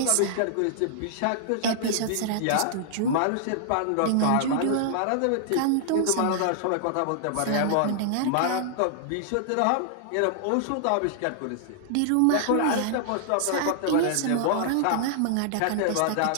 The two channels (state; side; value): different; both; correlation -0.01